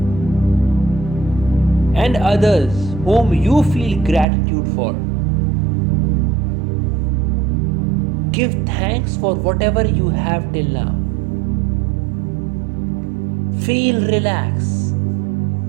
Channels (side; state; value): left; drops out; at 4.2 s